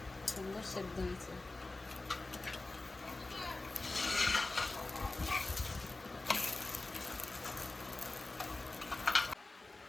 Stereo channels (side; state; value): right; quieter; 3.1 dB